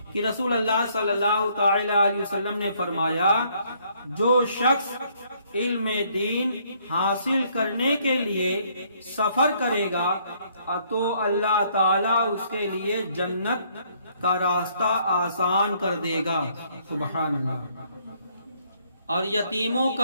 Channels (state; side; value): inverted; both; correlation -0.66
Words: کہ رسول اللہ صلی اللہ تعالی علیہ وسلم نے فرمایا، جو شخص علم دین حاصل کرنے کے لیے سفر کرے گا تو اللہ تعالیٰ اس کے لیے جنت کا راستہ آسان کر دے گا۔ سبحان اللہ۔ اور یتیموں